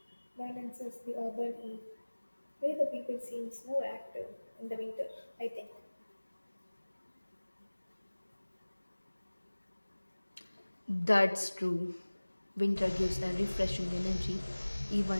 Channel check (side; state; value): both; inverted; correlation -1.00